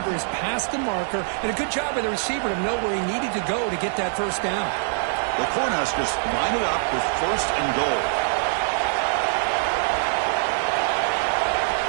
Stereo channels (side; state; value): left; silent; digital silence